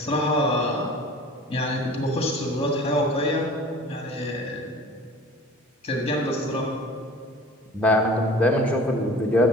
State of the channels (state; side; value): normal; both; correlation 0.43